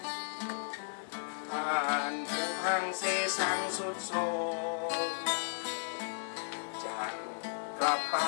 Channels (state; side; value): silent; right; digital silence